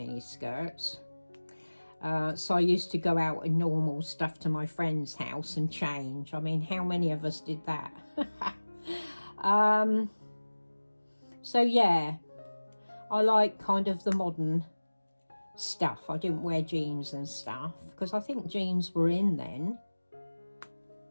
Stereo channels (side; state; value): both; inverted; correlation -1.00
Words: skirts. So I used to go out in normal stuff to my friend's house and change. I mean, how many of us did that? So yeah, I like kind of the modern stuff. I didn't wear jeans and stuff because I think jeans were in then.